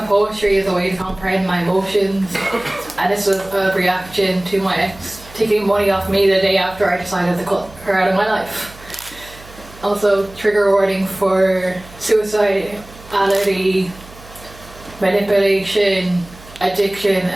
poetry as a way to comprehend my emotions, and this was a reaction to my ex taking money off me the day after I decided to cut her out of my life. Also, trigger warning for suicidality, manipulation, addiction,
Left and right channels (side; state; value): right; noise; hum, 21 dB below the sound